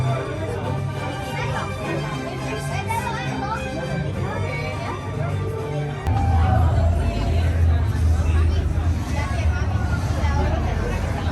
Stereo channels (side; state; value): both; identical; correlation 1.00